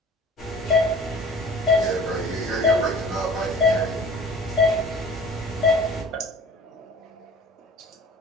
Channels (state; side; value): normal; both; correlation 0.44